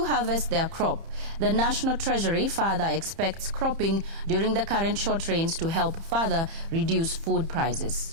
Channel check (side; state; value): left; late; 30 ms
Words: harvest their crop. The National Treasury further expects cropping during the current short rains to help further reduce food